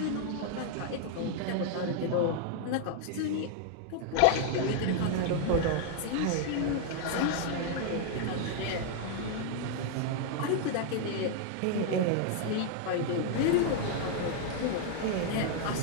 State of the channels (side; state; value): both; different; correlation 0.00